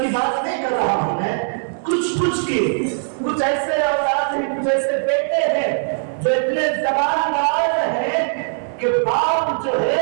کی بات نہیں کر رہا ہوں میں، کچھ ایسے اولاد ہیں، کچھ ایسے بیٹے ہیں جو اتنے زبان دراز ہیں کہ باپ جو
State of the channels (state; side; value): silent; left; 61 dB below the other